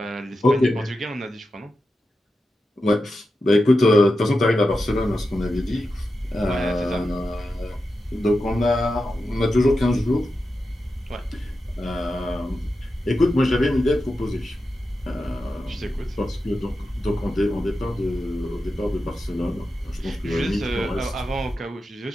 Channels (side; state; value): both; normal; correlation 0.90